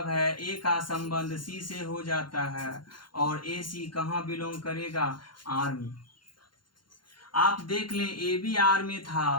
है a का संबंध c से हो जाता है और a c कहाँ बिलोंग करेगा, r में। आप देख लें ए बी आर में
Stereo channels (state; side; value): late; right; 0.72 ms